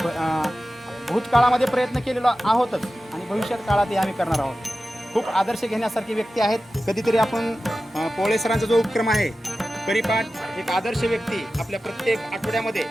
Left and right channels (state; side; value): normal; both; correlation 0.94